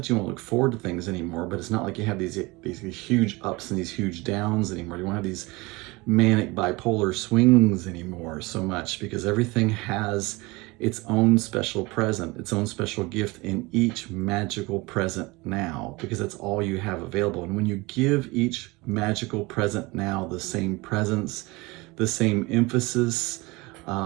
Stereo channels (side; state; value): left; quieter; 23.7 dB